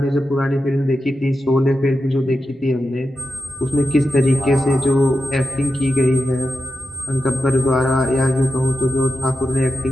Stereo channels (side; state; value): both; normal; correlation 0.89